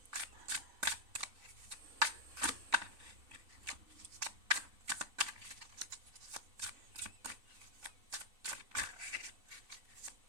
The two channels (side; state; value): left; late; 3.5 ms